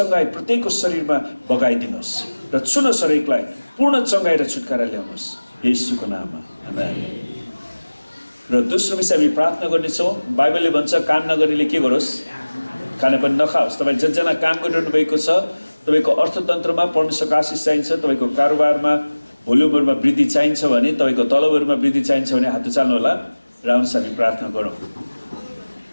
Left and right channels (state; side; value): inverted; both; correlation -1.00